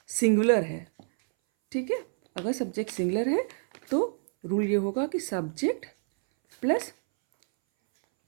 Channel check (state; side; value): silent; left; 59 dB below the other